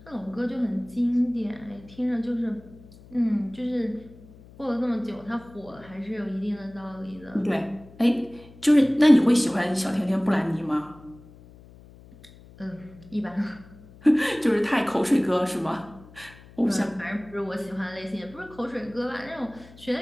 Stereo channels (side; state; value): left; noise; hum, 22 dB below the sound